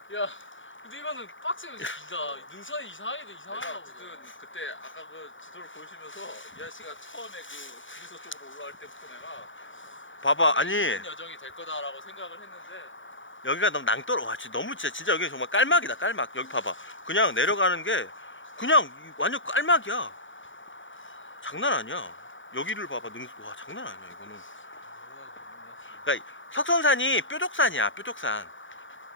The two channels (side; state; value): right; late; 0.56 ms